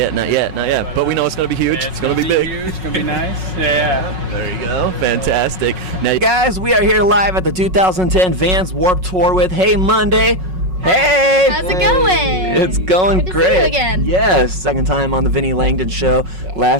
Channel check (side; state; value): left; late; 5.4 ms